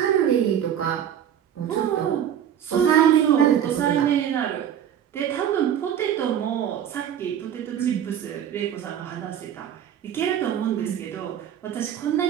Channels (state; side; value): quieter; left; 9.6 dB